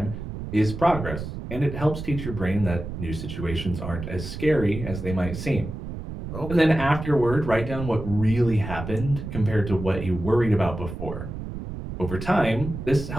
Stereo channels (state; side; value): noise; right; rumble, 8 dB below the sound